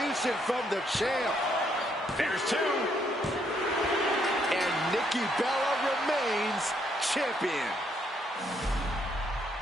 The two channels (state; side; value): normal; both; correlation 0.72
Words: from the champ. There's two. And Nikki Bella remains champion.